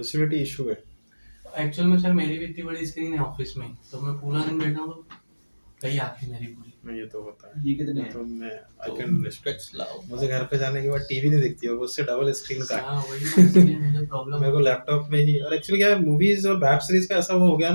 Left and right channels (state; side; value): inverted; both; correlation -1.00